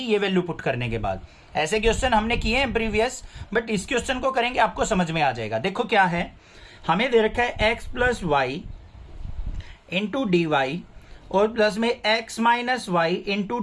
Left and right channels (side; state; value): both; identical; correlation 1.00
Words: ये वैल्यू पुट करने के बाद। ऐसे क्वेश्चन हमने किए हैं प्रीवियस, बट इस क्वेश्चन को करेंगे आपको समझ में आ जाएगा। देखो क्या है, हमें दे रखा है x plus y into d y और प्लस में x minus y into